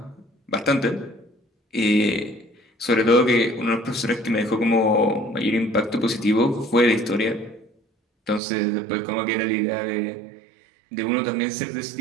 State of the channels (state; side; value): drops out; left; at 8.4 s